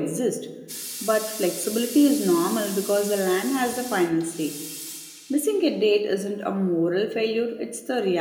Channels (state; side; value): identical; both; correlation 1.00